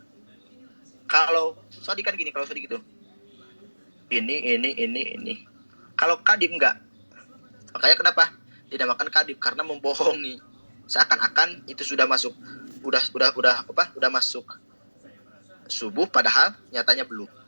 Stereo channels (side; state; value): both; inverted; correlation -1.00